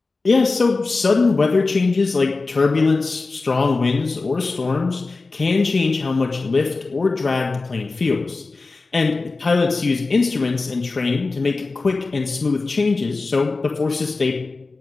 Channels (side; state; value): right; quieter; 3.7 dB